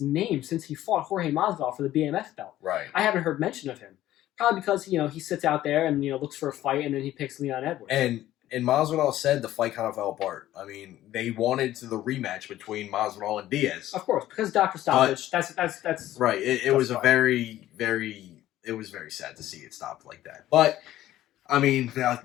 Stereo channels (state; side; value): quieter; right; 13.9 dB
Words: since he fought Jorge Masvidal for the BMF belt. Right. I haven't heard mention of him. Probably because, he sits out there and, looks for a fight, and then he picks Leon Edwards. And Masvidal said the fight kind of fell apart. I mean, they wanted the rematch between Masvidal and Diaz. Of course, because Dr. Stoppage. That's right. It was a very, very. It was very sad to see it stopped like that. But I mean, the